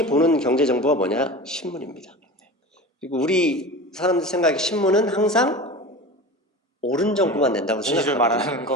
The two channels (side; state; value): both; normal; correlation 0.32